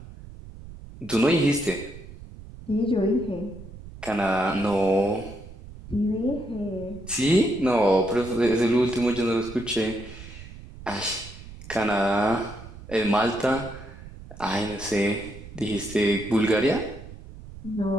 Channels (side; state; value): right; noise; rumble, 15 dB below the sound